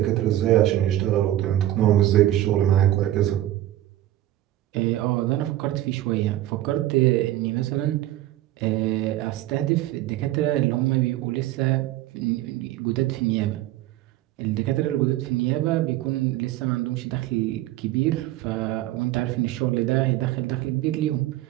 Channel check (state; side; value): quieter; left; 14.4 dB